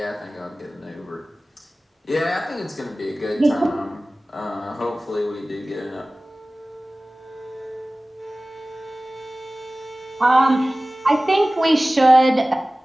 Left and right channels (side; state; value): both; normal; correlation 0.98